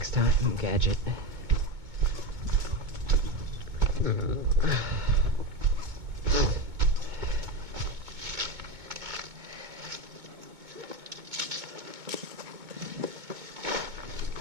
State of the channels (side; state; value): left; late; 2.2 ms